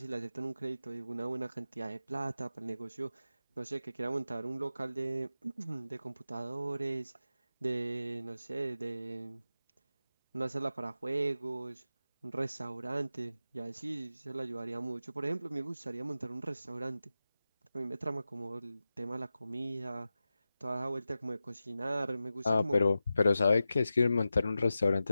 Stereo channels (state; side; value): inverted; both; correlation -0.92